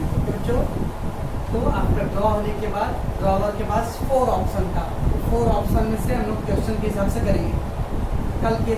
तो आफ्टर ड्रॉ होने के बाद ड्रॉवर के पास 4 ऑप्शन था, 4 ऑप्शन में से हम लोग क्वेश्चन के हिसाब से करेंगे, कल के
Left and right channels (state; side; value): identical; both; correlation 1.00